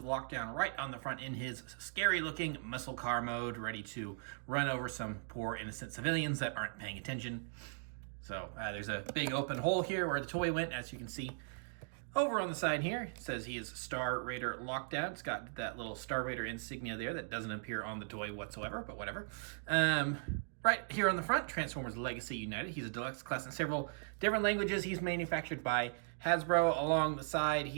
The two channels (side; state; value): left; silent; digital silence